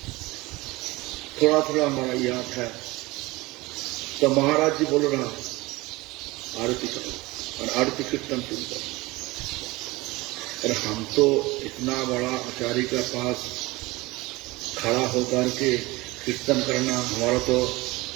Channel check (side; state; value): left; quieter; 21.5 dB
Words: थोड़ा थोड़ा हमारा याद है। तो महाराज जी बोल रहा आरती करो और आरती कीर्तन शुरू करो। और हम तो इतना बड़ा आचार्य के पास खड़ा होकर के कीर्तन करना, हमारा तो